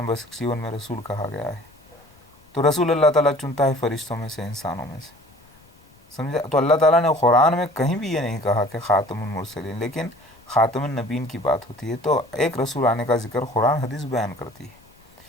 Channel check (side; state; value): left; noise; rumble, 29 dB below the sound